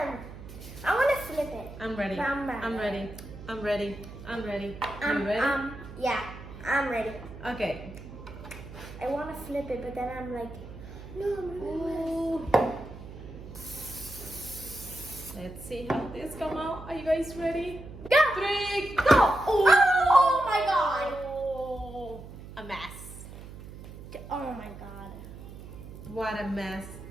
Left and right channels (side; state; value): right; noise; hum, 14 dB below the sound